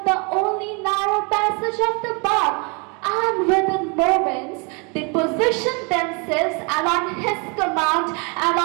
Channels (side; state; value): left; quieter; 32.7 dB